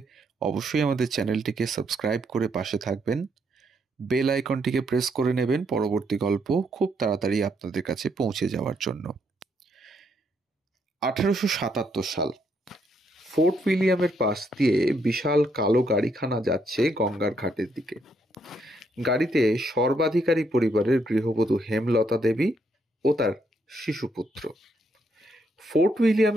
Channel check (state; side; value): normal; both; correlation 0.74